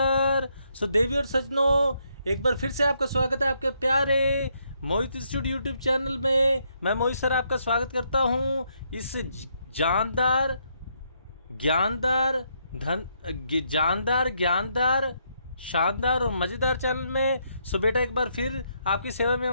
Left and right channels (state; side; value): inverted; both; correlation -0.75